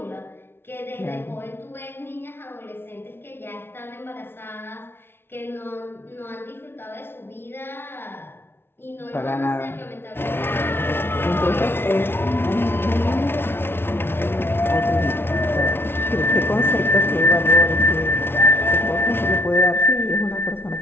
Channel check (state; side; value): late; right; 0.11 ms